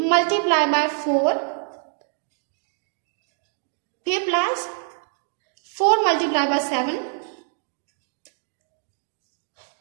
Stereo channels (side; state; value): left; silent; 58 dB below the other